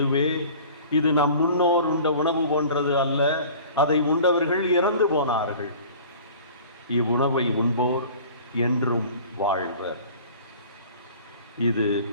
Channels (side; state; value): both; inverted; correlation -0.45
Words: இது நம் முன்னோர் உண்ட உணவு போன்றது அல்ல, அதை உண்டவர்கள் இறந்து போனார்கள். இவ்வுணவை உண்போர் என்றும் வாழ்வர். இது